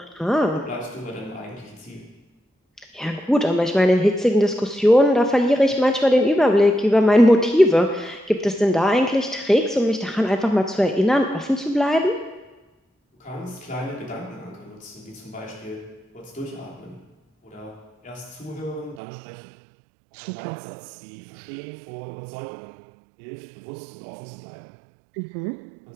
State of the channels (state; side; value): drops out; left; at 19.0 s